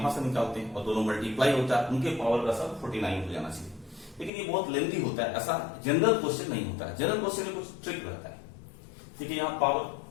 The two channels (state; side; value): drops out; right; at 4.3 s